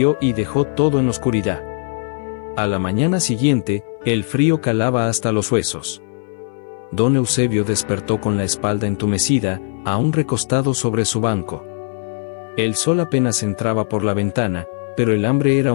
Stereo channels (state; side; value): silent; right; 59 dB below the other